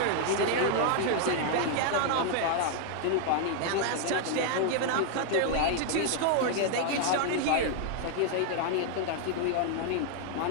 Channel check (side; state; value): both; different; correlation 0.00